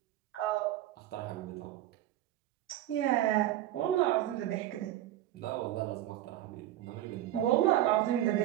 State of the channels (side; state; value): left; quieter; 13.4 dB